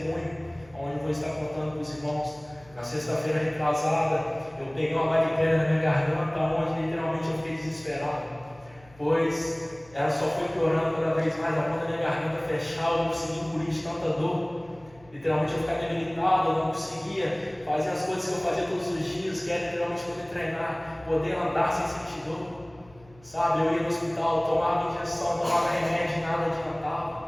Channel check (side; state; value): left; noise; hum, 26 dB below the sound